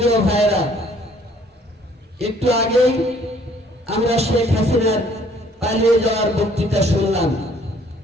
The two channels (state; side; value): normal; both; correlation 0.60